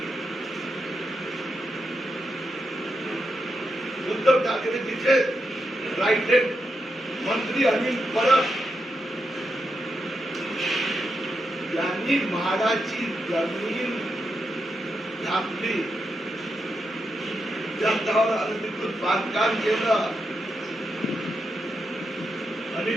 उद्धव ठाकरे तिथे राईट मंत्री अनिल परब यांनी म्हाडाची जमीन छापली. त्याच्यावर अनधिकृत बांधकाम केलं.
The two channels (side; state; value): both; normal; correlation 0.85